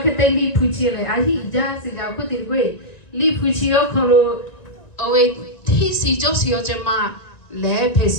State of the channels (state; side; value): late; right; 1.9 ms